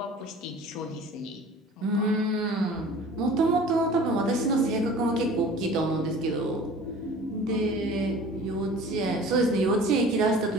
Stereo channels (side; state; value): both; normal; correlation 0.44